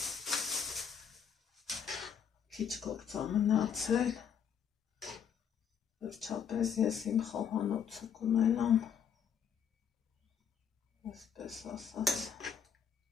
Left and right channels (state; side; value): quieter; right; 7.7 dB